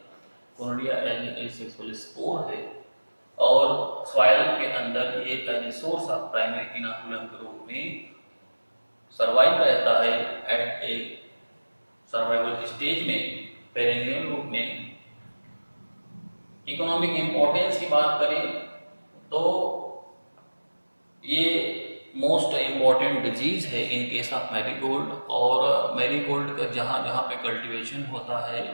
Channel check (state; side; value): inverted; both; correlation -1.00